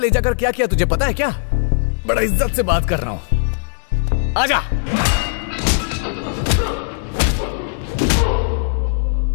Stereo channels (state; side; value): silent; right; digital silence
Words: जाकर क्या किया तुझे पता है क्या? बड़ा इज्जत से बात कर रहा हूं, आजा।